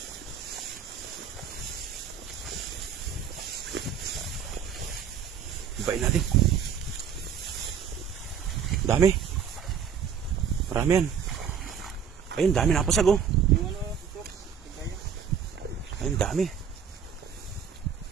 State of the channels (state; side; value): quieter; left; 7.5 dB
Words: Ibain natin. Dami. Marami yan. Ayun, dami napasag oh. Ayun, dami.